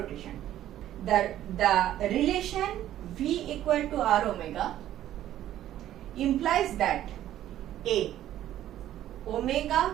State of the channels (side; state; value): left; quieter; 12.5 dB